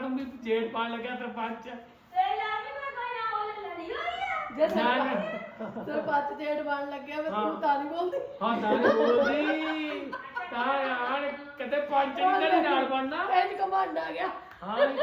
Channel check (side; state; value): both; identical; correlation 1.00